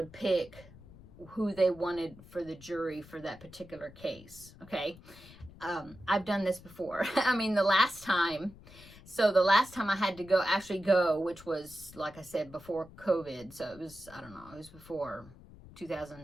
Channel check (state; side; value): noise; left; rumble, 20 dB below the sound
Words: pick who they wanted for the jury for that particular case. Okay. I've done this before. I mean, the last time I had to actually go, which was, like I said, before COVID. So it was, I don't know, it was before